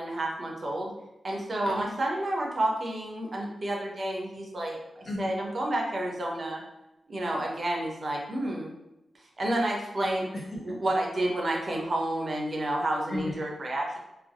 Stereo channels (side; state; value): both; normal; correlation 0.92